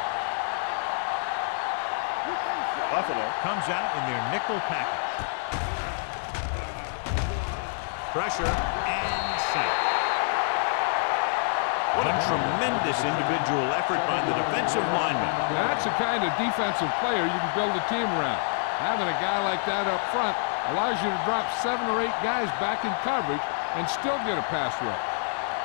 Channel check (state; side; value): silent; right; digital silence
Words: Buffalo comes out in their nickel package. Pressure and sack. What a tremendous individual effort by the defensive lineman. That's the kind of defensive player you can build a team around. Having a guy like that up front allows you to drop 7 or 8 guys back in coverage and still get a pass rush.